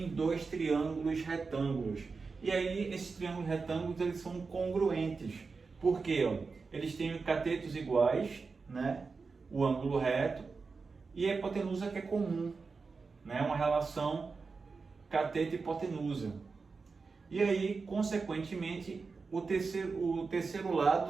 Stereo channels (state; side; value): quieter; left; 4.6 dB